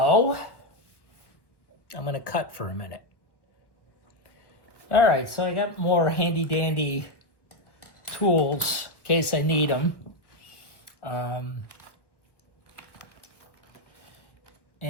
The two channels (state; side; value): late; right; 1.1 ms